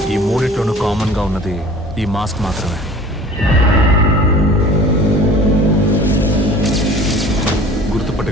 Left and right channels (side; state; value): both; normal; correlation 0.45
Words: ఈ మూడిట్లోనూ కామన్ గా ఉన్నది ఈ మాస్క్ మాత్రమే.